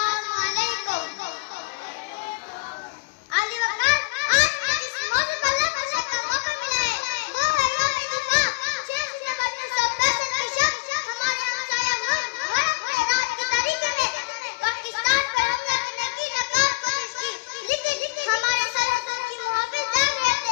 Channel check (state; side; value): quieter; right; 26.1 dB